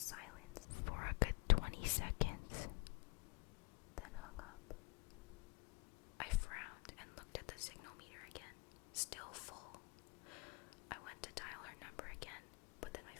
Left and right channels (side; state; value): right; quieter; 28.8 dB